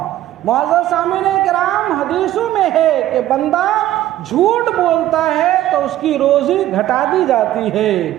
معزز سامعین کرام، حدیثوں میں ہے کہ بندہ جھوٹ بولتا ہے تو اس کی روزی گھٹا دی جاتی ہے،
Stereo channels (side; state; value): left; quieter; 13.7 dB